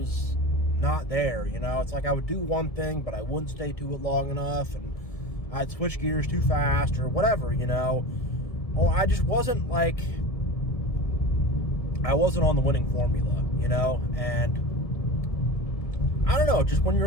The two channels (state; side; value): late; right; 1.7 ms